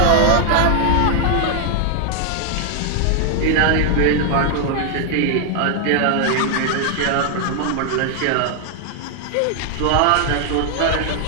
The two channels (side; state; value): both; different; correlation 0.00